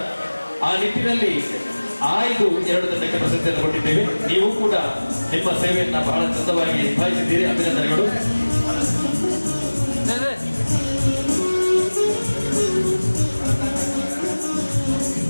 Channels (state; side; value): inverted; both; correlation -1.00